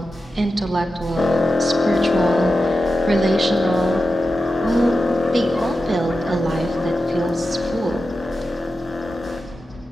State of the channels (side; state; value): both; normal; correlation 0.91